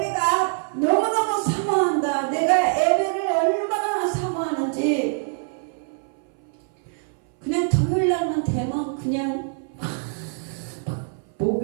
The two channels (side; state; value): left; silent; 60 dB below the other